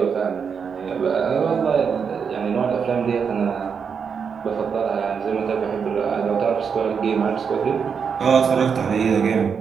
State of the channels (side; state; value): left; quieter; 6.4 dB